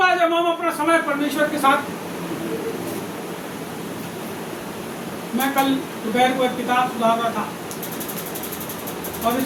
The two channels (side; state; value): both; identical; correlation 1.00